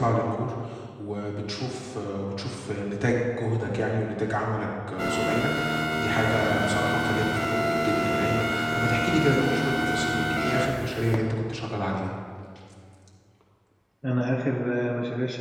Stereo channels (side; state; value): both; identical; correlation 1.00